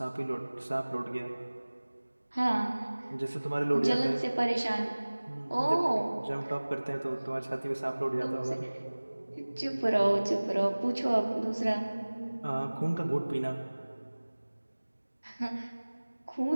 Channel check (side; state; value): both; inverted; correlation -1.00